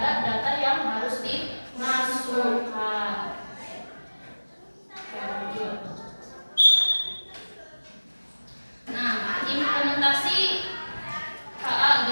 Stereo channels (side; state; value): both; inverted; correlation -1.00